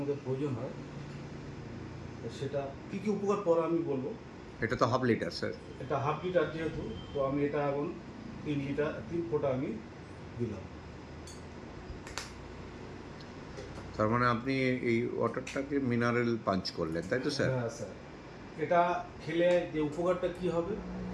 প্রয়োজন হয়। তো সেটা কী কী উপকার পরে আমি বলবো। এটা তো হাফ লিটার স্যার। এটা হাফ লিটার যেহেতু, তো আমি এটা এখন 3 ফোঁটা আমি দিলাম। তার মানে আপনি এই ওয়াটারটাকে মিনারেল পাঞ্চ করলেন, তাই তো স্যার? হ্যাঁ স্যার, এটা খেলে যে উপকারটা কি হবে,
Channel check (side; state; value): both; identical; correlation 1.00